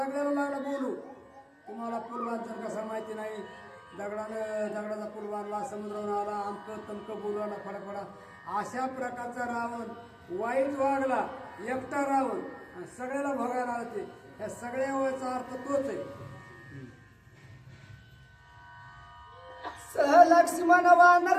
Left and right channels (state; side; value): identical; both; correlation 1.00